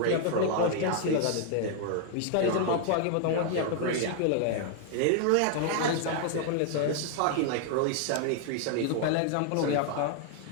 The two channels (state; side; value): different; both; correlation 0.00